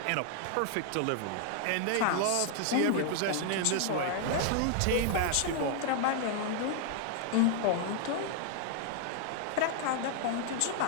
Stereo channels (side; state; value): both; different; correlation 0.00